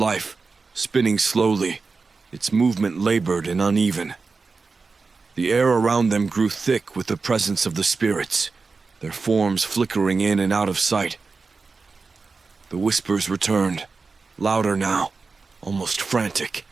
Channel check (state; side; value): quieter; left; 4.4 dB